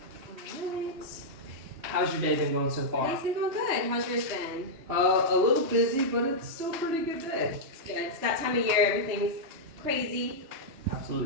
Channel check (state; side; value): late; left; 2.7 ms